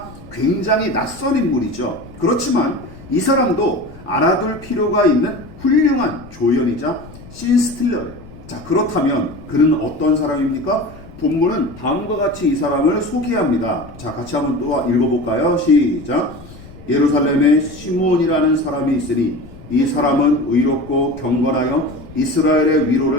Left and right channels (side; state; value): left; noise; rumble, 19 dB below the sound